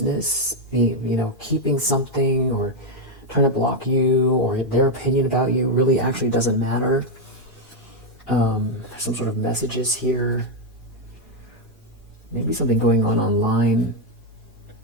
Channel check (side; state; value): both; normal; correlation 0.02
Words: keeping something or trying to block you, or their opinion about you really actually doesn't matter. Some sort of messages here. Maybe something going on online.